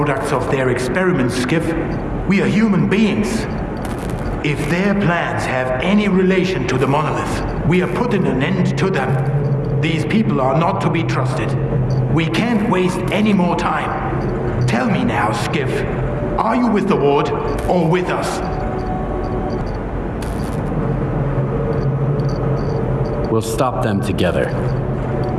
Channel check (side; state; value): both; identical; correlation 1.00